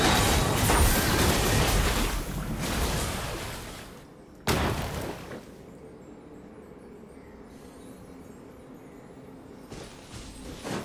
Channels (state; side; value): identical; both; correlation 1.00